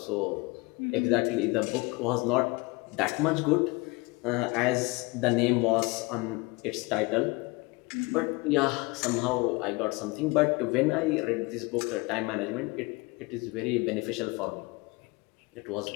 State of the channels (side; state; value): right; quieter; 25.3 dB